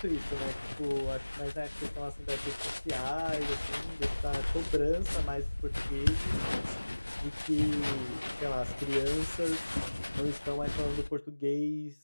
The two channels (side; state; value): both; inverted; correlation -1.00